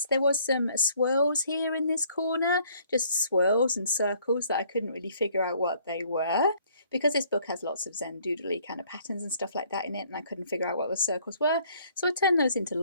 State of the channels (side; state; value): both; inverted; correlation -0.62